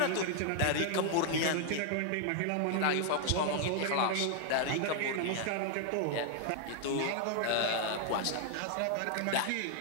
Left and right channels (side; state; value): both; different; correlation 0.00